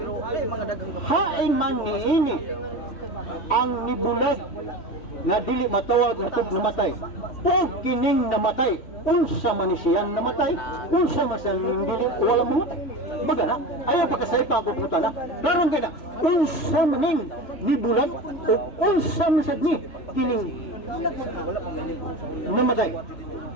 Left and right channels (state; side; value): late; right; 3.2 ms